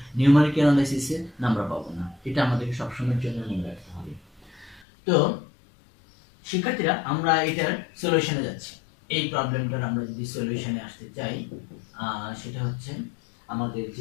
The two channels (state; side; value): drops out; right; at 4.9 s